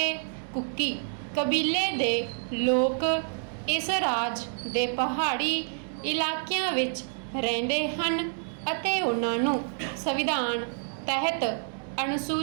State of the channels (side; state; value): left; silent; 59 dB below the other